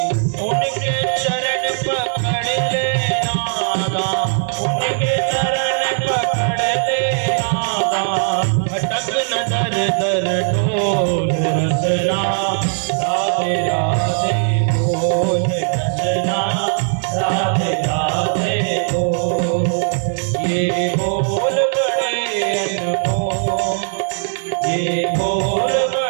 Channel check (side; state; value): left; silent; digital silence